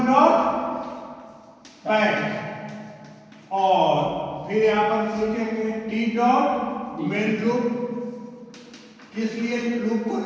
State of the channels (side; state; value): both; identical; correlation 1.00